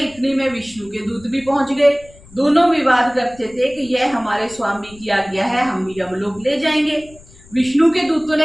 में विष्णु के दूत भी पहुंच गए। दोनों विवाद करते थे कि यह हमारे स्वामी की आज्ञा है, हम यमलोक ले जाएंगे। विष्णु के दूतों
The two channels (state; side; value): noise; left; rumble, 24 dB below the sound